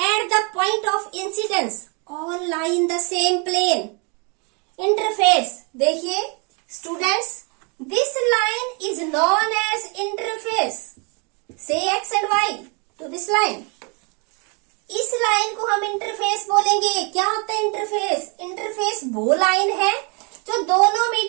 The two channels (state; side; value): quieter; left; 33.7 dB